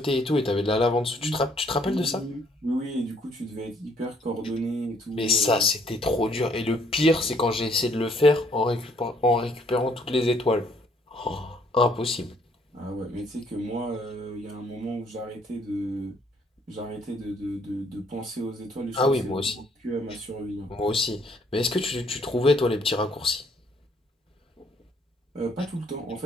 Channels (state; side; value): normal; both; correlation 0.65